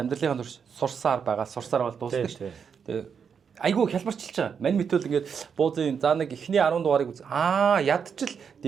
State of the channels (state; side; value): quieter; left; 6.7 dB